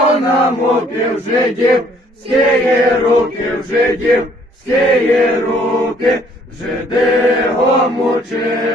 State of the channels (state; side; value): normal; both; correlation 0.62